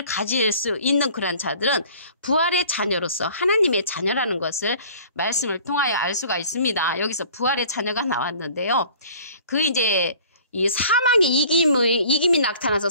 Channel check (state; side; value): inverted; both; correlation -0.49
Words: 가질 수 있는 그러한 자들은 부활의 자녀로서 하나님의 자녀라는 것을 말씀을 통하여 알 수가 있습니다. 여기서 부활의 자녀가 나왔는데요. 이 사망의 이김이 나타나서